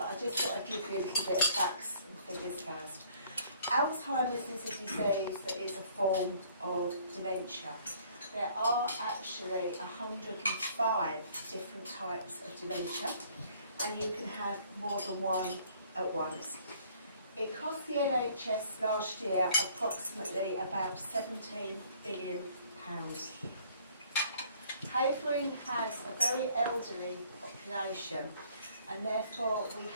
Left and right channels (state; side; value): inverted; both; correlation -0.59